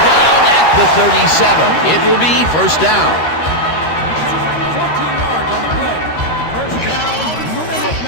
down at the 37. It will be first down. 14 yards on the play. First down,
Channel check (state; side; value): late; right; 13 ms